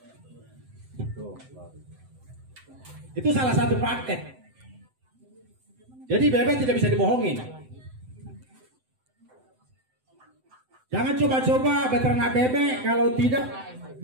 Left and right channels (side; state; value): left; late; 7.8 ms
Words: Itu salah satu praktek. Jadi bebek tidak bisa dibohongin. Jangan coba-coba beternak bebek kalau tidak